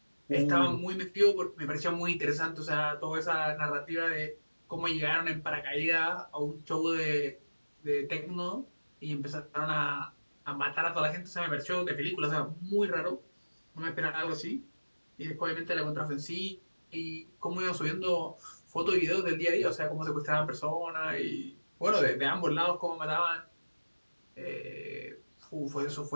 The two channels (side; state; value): both; inverted; correlation -1.00